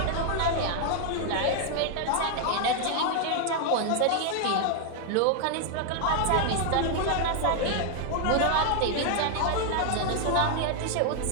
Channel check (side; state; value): both; different; correlation 0.00